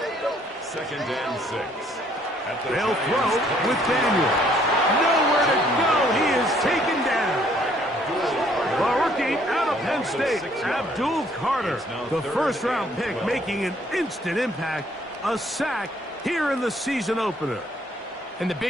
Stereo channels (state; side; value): normal; both; correlation 0.64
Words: and 6. They'll throw with Daniels. Nowhere to go. He is taken down. The rookie out of Penn State, Abdul Carter, the first-round pick, making an instant impact. A sack here in the season opener. And the